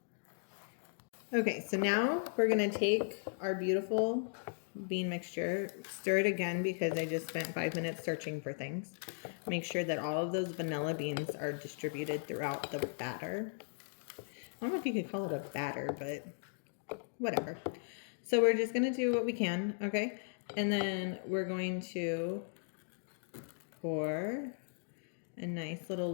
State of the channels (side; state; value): right; silent; digital silence